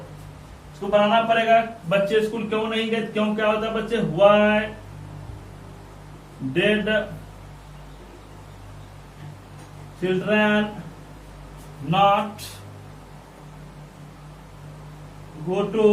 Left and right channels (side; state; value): both; identical; correlation 1.00